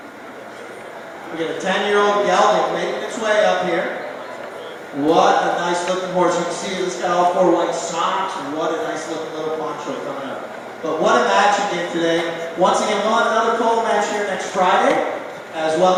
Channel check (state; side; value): identical; both; correlation 1.00